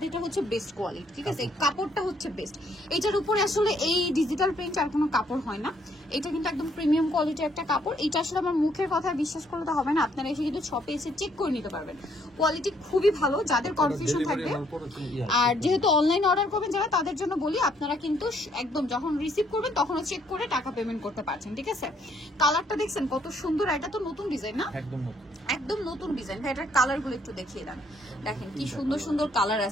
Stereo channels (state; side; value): normal; both; correlation 0.68